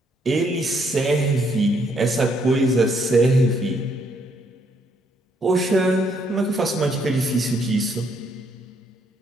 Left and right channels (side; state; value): both; normal; correlation 0.71